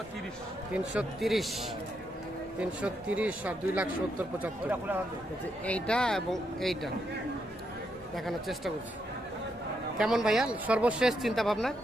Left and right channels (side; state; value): both; normal; correlation 0.80